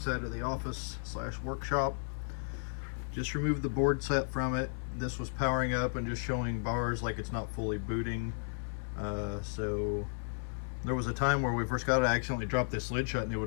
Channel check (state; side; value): silent; right; digital silence